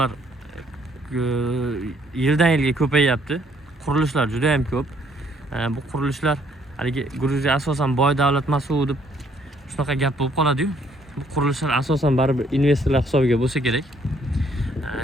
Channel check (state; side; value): normal; both; correlation 0.66